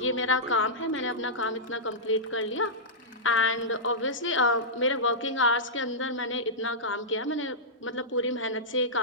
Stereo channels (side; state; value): both; normal; correlation -0.14